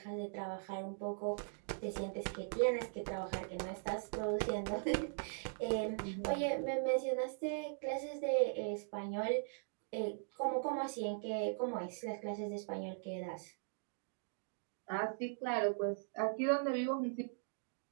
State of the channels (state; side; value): silent; left; digital silence